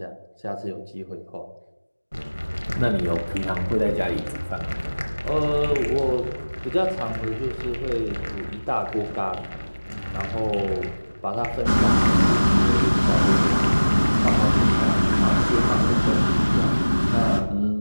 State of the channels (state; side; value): inverted; both; correlation -1.00